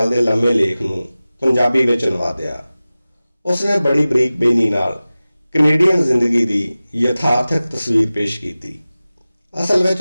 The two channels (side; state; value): both; inverted; correlation -0.97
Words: ਦੇ ਲੰਮੇ ਲੇਖ ਨੂੰ ਪੰਜਾਬੀ ਵਿੱਚ ਅਨੁਵਾਦਿਆ। ਉਸਨੇ ਬੜੀ ਬਰੀਕ ਬੇਨੀ ਨਾਲ ਕੈਨੇਡੀਅਨ ਜ਼ਿੰਦਗੀ ਦੀ ਯਥਾਰਥਕ ਤਸਵੀਰ ਪੇਸ਼ ਕੀਤੀ। ਅਸਲ ਵਿੱਚ